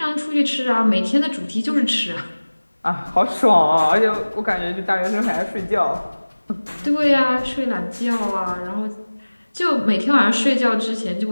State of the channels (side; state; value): both; inverted; correlation -1.00